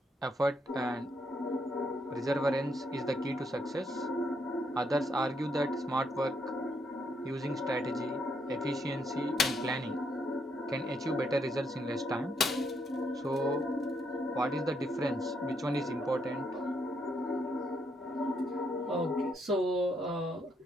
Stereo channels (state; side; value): normal; both; correlation 0.75